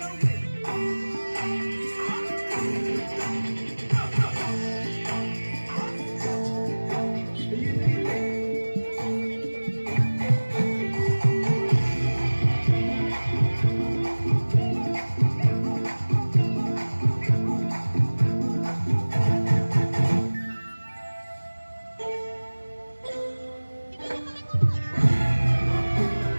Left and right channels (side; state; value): both; inverted; correlation -1.00